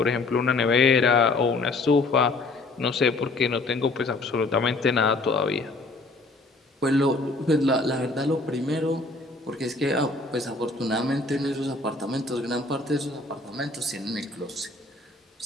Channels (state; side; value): quieter; right; 3.2 dB